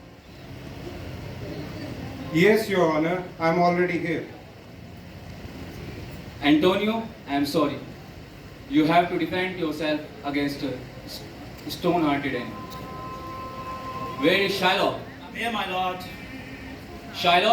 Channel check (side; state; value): both; identical; correlation 1.00